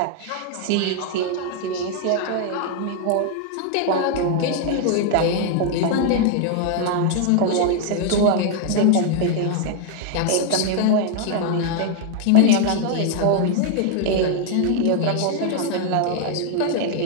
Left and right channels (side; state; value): both; different; correlation 0.00